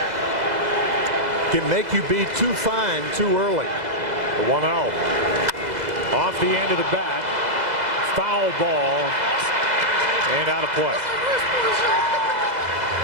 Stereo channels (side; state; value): left; late; 2.0 ms